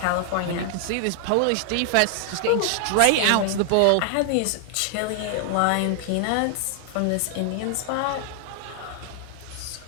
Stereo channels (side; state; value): both; different; correlation 0.00